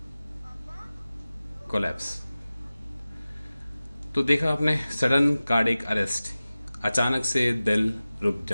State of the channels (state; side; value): inverted; both; correlation -0.97